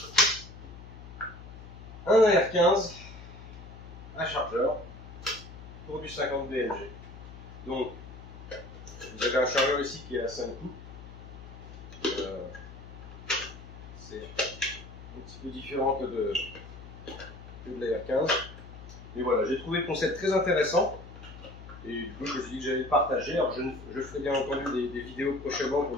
un AR-15 à chargeur pour du 50 BMG. Donc vous avez un chargeur ici qui est à 5 coups. C'est un petit peu différent que de l'AR-15. Et voilà, j'ai trouvé le concept très intéressant. Et du coup, je me suis dit que j'allais le partager. Alors, je ferai bien entendu des vidéos prochainement pour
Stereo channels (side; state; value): left; noise; hum, 14 dB below the sound